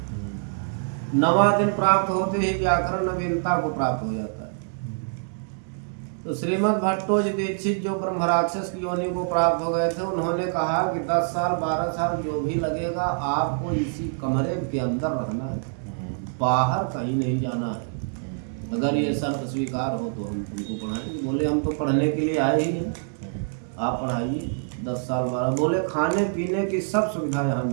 9वां दिन प्राप्त होते ही व्याकरण नवीनता को प्राप्त हो जाता है। तो श्रीमद् भट्टोजी दीक्षित जो ब्रह्मराक्षस की योनि को प्राप्त हो गए थे, उन्होंने कहा कि 10 साल 12 साल जो भी लगेगा, आपको इसी कमरे के अंदर रहना है, बाहर कहीं नहीं जाना है। अगर ये शर्त स्वीकार हो तो हम तुमको पढ़ाएंगे। बोले हम तो पढ़ने के लिए आए ही हैं, आप पढ़ाइए। 10 साल 12। बोले खाने पीने की सब सुविधा यहाँ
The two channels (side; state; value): left; silent; digital silence